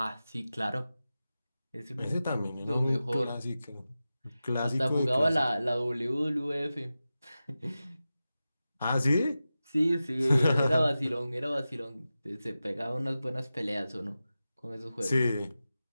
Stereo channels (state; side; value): inverted; both; correlation -0.94